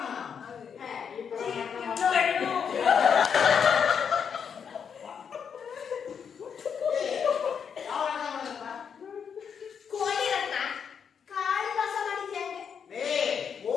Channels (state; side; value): quieter; right; 7.1 dB